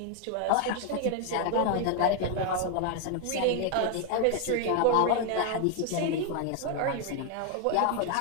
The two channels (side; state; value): both; different; correlation 0.01